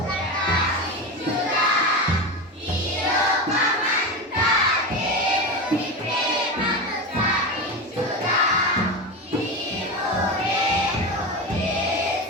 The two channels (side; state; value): both; normal; correlation 0.20